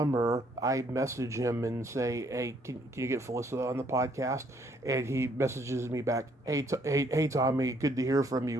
I message him and say, "Hey, can you get Felissa on the podcast?" And he messages me back, "Hey, Tommy, good to hear from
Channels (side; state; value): both; normal; correlation 0.67